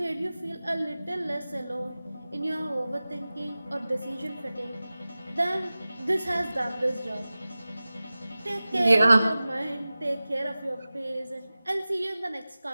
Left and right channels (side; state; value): both; inverted; correlation -0.97